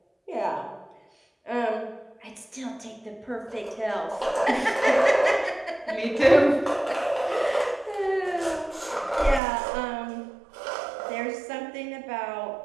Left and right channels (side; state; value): left; drops out; at 9.4 s